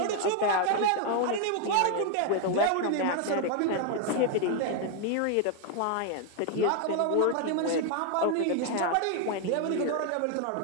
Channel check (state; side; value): different; both; correlation 0.00